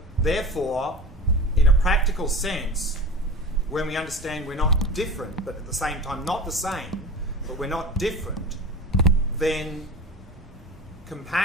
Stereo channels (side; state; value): both; normal; correlation 0.33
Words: therefore, in a practical sense, when we understand we're not different, but at the same time not the same, but we're not different, then